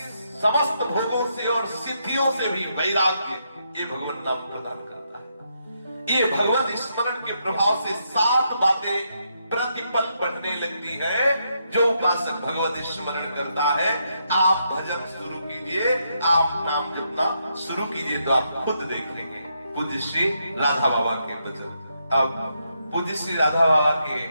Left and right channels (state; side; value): inverted; both; correlation -0.79